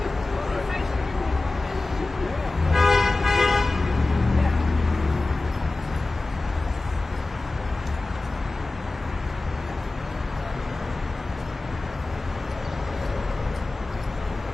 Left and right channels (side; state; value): right; quieter; 3.2 dB